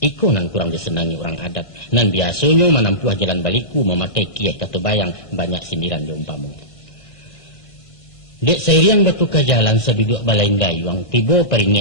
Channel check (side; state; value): right; late; 1.5 ms